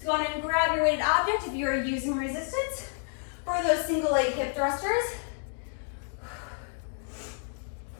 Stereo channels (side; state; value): right; silent; 58 dB below the other